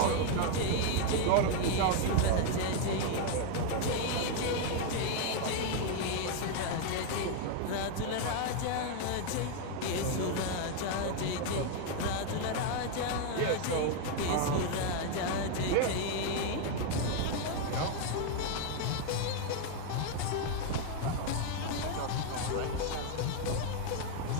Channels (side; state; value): both; different; correlation 0.01